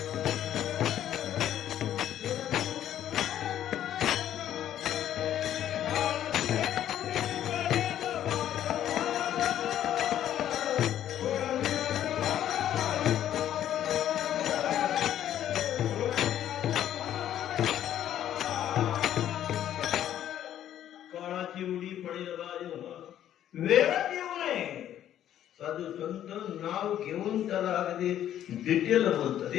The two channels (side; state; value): right; quieter; 11.2 dB